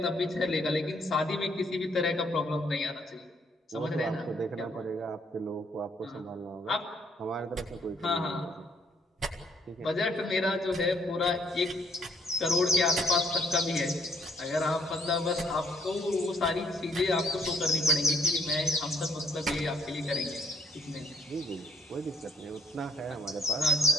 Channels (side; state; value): both; normal; correlation 0.65